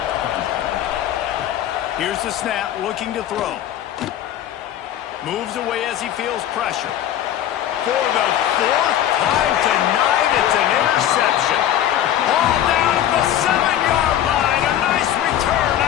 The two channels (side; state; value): right; quieter; 11.4 dB